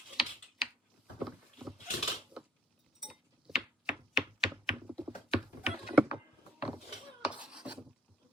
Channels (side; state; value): both; normal; correlation 0.62